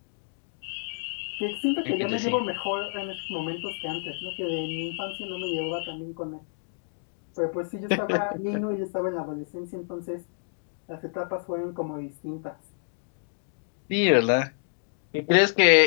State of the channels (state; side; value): silent; right; digital silence